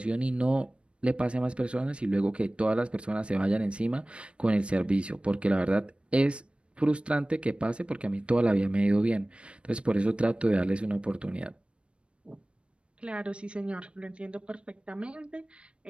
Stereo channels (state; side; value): late; left; 0.058 ms